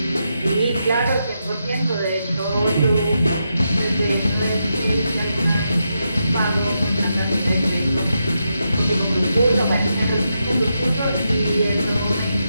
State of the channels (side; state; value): both; inverted; correlation -0.84